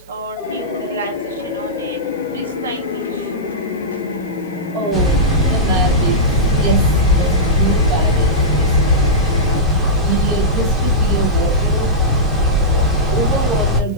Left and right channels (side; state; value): right; noise; hiss, 30 dB below the sound